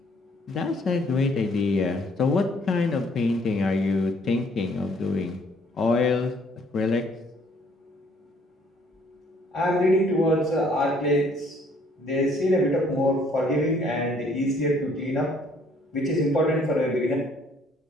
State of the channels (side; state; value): both; normal; correlation 0.62